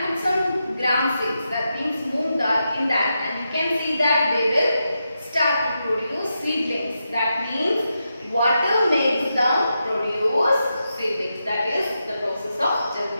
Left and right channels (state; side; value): inverted; both; correlation -0.87